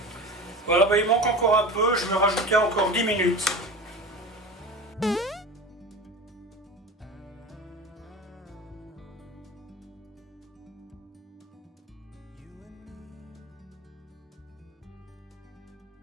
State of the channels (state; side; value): normal; both; correlation 0.31